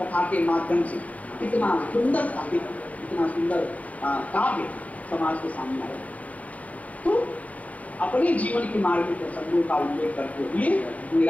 के माध्यम से इतना सुंदर साहित्य, इतना सुंदर काव्य समाज के सामने आया। तो अपने जीवन के मार्मिक प्रसंगों का उल्लेख करते हुए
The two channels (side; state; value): right; late; 0.070 ms